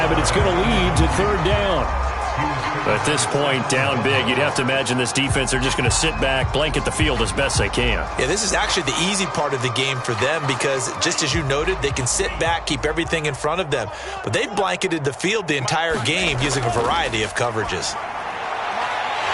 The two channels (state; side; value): identical; both; correlation 1.00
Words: but it's going to lead to third down. At this point, down big, you'd have to imagine this defense are just going to sit back, blanket the field as best they can. Yeah, this is actually the easy part of the game for them because, just as you noted, they can sit back, keep everything in front of them. But they've blanketed the field the entire game using a variety of coverages.